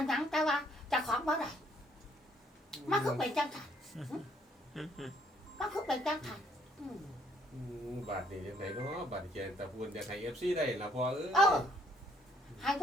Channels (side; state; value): both; normal; correlation 0.66